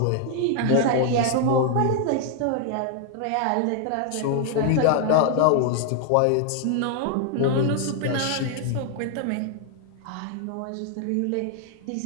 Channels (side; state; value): both; different; correlation 0.00